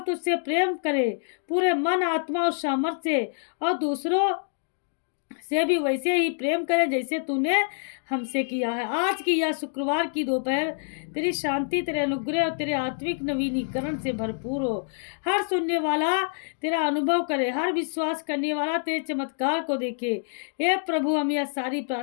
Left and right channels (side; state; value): right; silent; digital silence